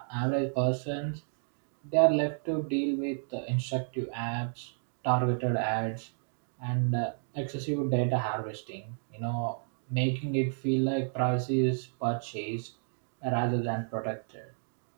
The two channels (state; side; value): silent; left; digital silence